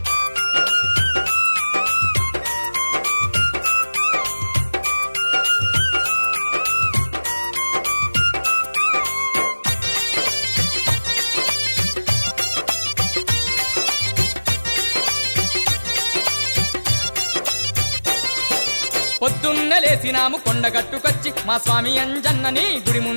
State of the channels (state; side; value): inverted; both; correlation -1.00